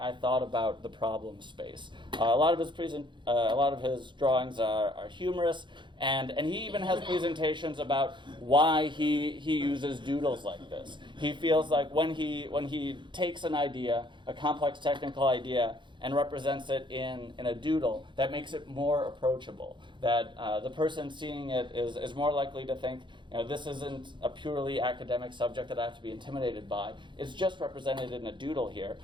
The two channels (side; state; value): left; late; 0.23 ms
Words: thought about the problem space. A lot of his drawings are humorous, and he even has presentations about why he uses doodles like this. He feels like when he takes an idea, a complex technical idea, and represents it in a doodle, that makes it more approachable. That the person seeing it is more likely to think, this isn't a purely academic subject that I have to be intimidated by. It's just represented in a doodle here.